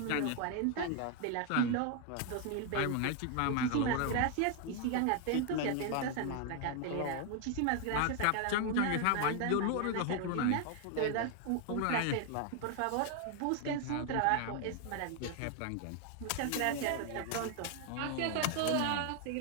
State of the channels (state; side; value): different; both; correlation 0.01